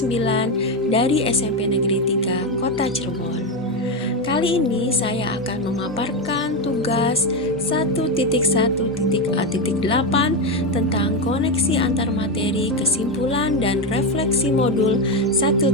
dari SMP Negeri 3 Kota Cirebon. Kali ini saya akan memaparkan tugas 1.1.A.8 tentang koneksi antar materi, kesimpulan, dan refleksi modul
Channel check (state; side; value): normal; both; correlation 0.10